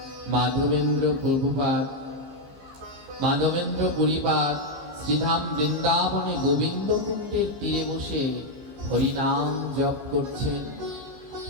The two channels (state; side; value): late; left; 15 ms